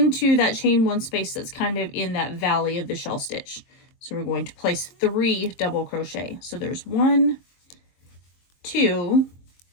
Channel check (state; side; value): late; right; 22 ms